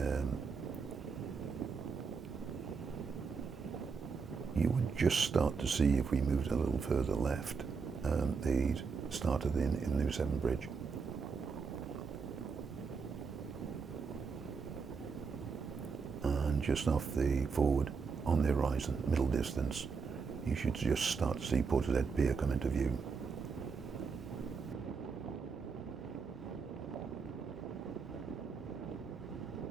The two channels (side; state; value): left; quieter; 5.3 dB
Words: just start to see, if we moved a little further left, the start of the New Severn Bridge. And just off the forward, on the horizon, middle distance, you should just start to see Portishead Pier come into view.